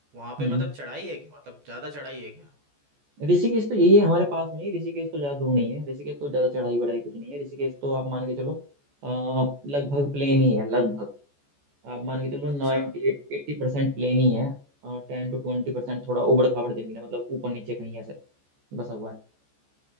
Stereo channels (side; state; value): left; late; 14 ms